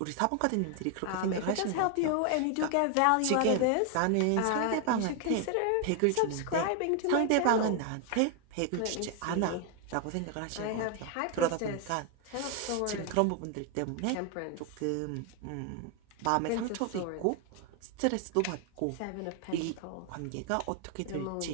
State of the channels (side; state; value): both; different; correlation 0.00